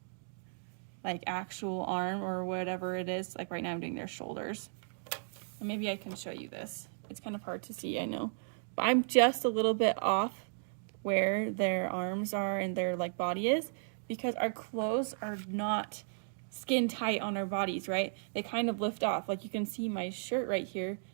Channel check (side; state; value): left; silent; digital silence